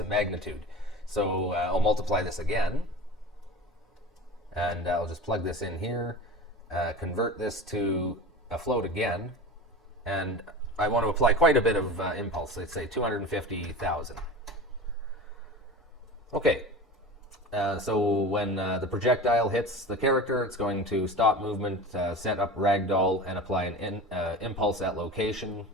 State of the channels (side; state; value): both; normal; correlation 0.33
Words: magnitude. So I'll multiply this again, and I'll just plug this in here, convert this to a float again, and I want to apply quite a bit of impulse. Let's say 250,000. Okay, so when the projectile hits the character, it's going to stop movement, set up ragdoll, and apply an impulse at location,